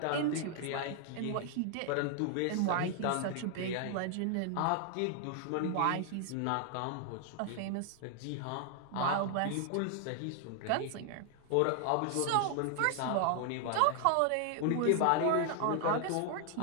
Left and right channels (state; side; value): different; both; correlation 0.00